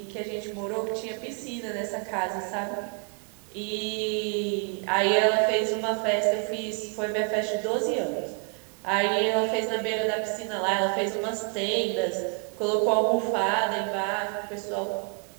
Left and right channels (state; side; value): quieter; left; 39.1 dB